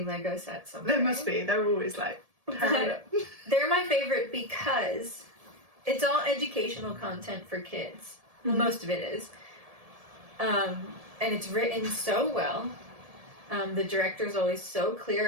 Lego set somewhere. There must be. They're always They're my favorite because it's all educational content for kids. Well, most of it is. And it's written so well. The director's always so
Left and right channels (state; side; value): late; left; 1.7 ms